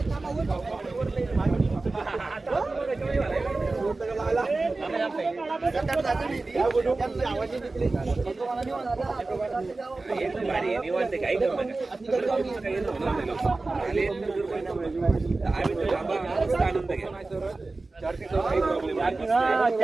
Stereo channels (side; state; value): left; quieter; 3.4 dB